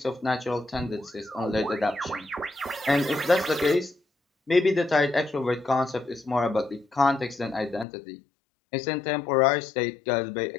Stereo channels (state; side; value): drops out; right; at 7.9 s